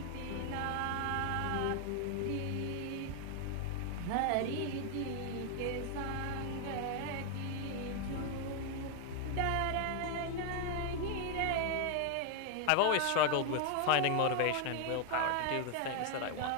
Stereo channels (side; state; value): both; different; correlation 0.01